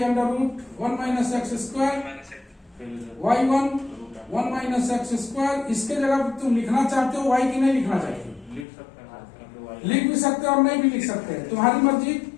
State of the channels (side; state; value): right; drops out; at 8.7 s